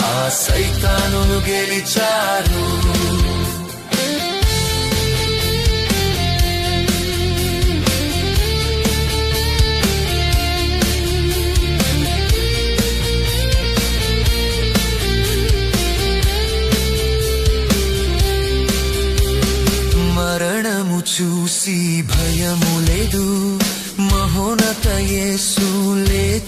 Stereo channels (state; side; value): identical; both; correlation 1.00